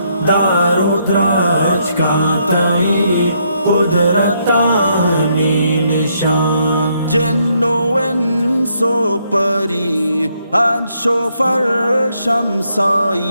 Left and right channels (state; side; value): inverted; both; correlation -0.74